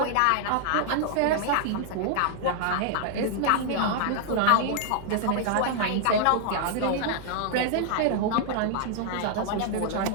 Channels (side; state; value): both; different; correlation 0.00